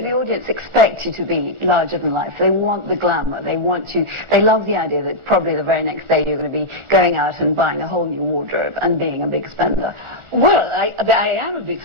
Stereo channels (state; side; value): late; left; 1.4 ms